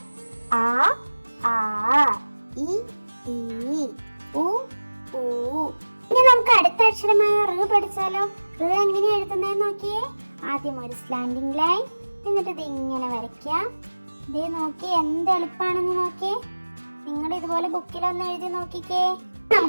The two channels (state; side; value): inverted; both; correlation -1.00